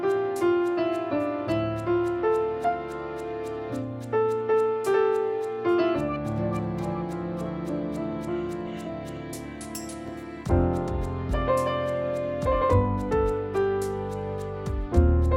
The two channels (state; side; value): identical; both; correlation 1.00